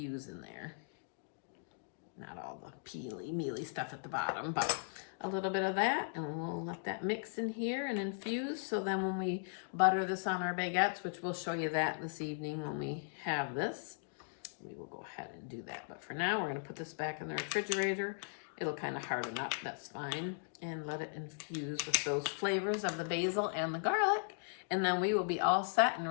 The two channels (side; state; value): right; silent; digital silence